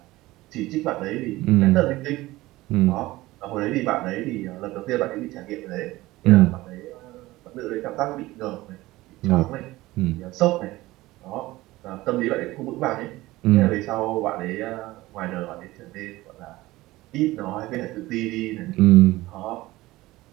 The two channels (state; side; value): quieter; left; 18.5 dB